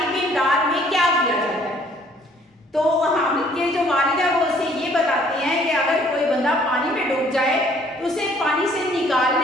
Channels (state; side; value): normal; both; correlation 0.60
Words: امداد میں کیا کیا جاتا ہے؟ تو حامد کے جو والد ہیں وہ اسے یہ بتاتے ہیں کہ اگر کوئی بندہ پانی میں ڈوب جائے تو اسے پانی سے